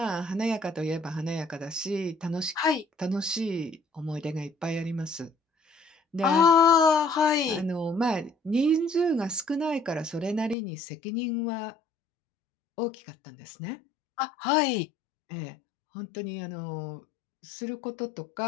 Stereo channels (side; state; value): right; drops out; at 10.6 s